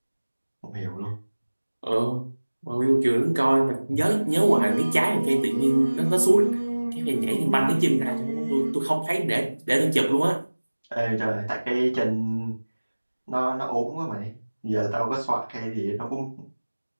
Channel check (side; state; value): both; inverted; correlation -1.00